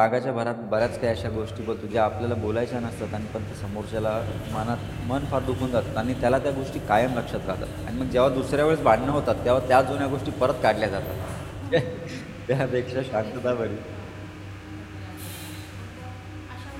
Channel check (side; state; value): both; identical; correlation 1.00